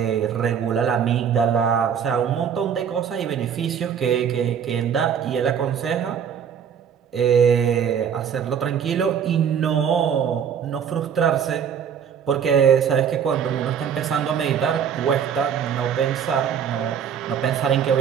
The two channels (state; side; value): quieter; left; 7.9 dB